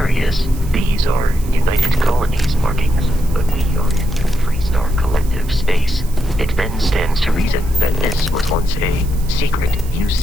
these are United Colonies markings, but we are in the Freestar Collective space. It then stands to reason that this was once a secret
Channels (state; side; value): noise; right; hiss, 19 dB below the sound